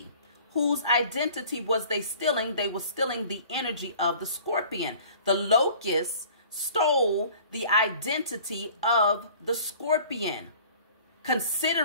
Whose identity was they stealing? They were stealing the energy of the scorpion. The locusts stole the identity of the scorpion,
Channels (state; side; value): inverted; both; correlation -0.49